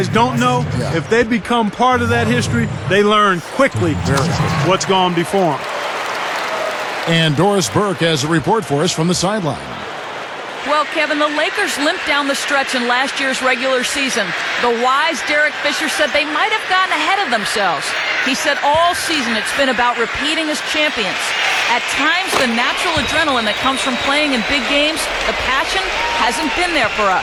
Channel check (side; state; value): both; identical; correlation 1.00